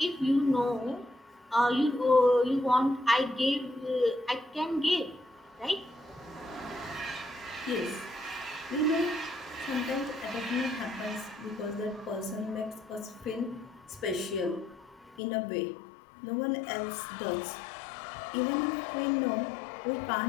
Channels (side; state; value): right; drops out; at 15.2 s